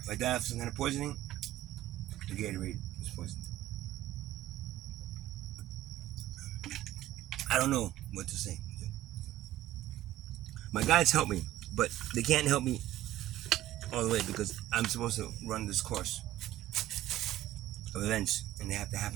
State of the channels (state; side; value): quieter; left; 14.5 dB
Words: I die of some kind of poisoning, the Gatorade is poisoned. I don't know what to say. My guides help me, but they can't help me all the way because I'm supposed to run this course of events, and they have to